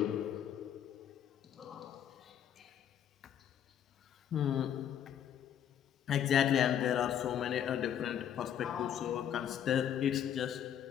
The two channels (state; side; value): quieter; right; 9.6 dB